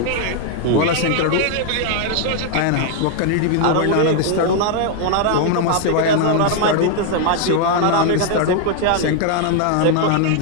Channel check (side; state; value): both; different; correlation 0.00